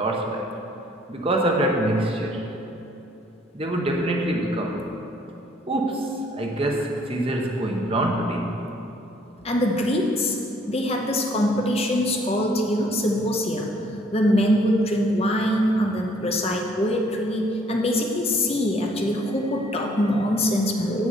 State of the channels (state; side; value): normal; both; correlation 0.63